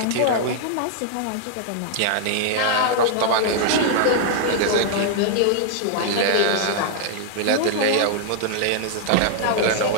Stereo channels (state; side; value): different; both; correlation -0.01